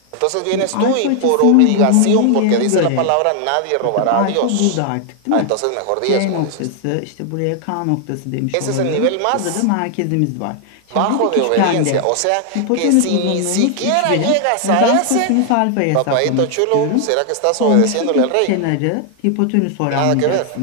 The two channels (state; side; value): different; both; correlation 0.00